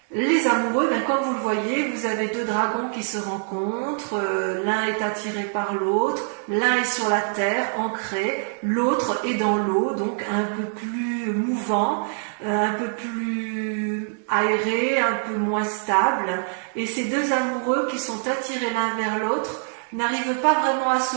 Les amoureux, comme vous le voyez, vous avez deux dragons qui se rencontrent, l'un est attiré par l'autre, l'un est sur la terre, ancré, l'autre est dans l'eau, donc un peu plus mouvant, un peu plus aéré, un peu moins stable. Et ces deux amoureux qui sont attirés l'un vers l'autre n'arrivent pas vraiment à se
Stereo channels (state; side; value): silent; left; digital silence